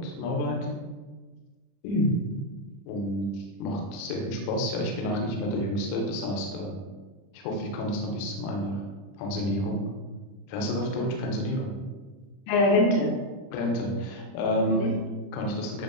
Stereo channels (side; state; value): right; late; 30 ms